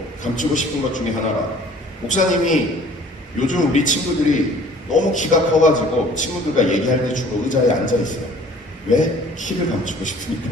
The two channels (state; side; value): normal; both; correlation 0.51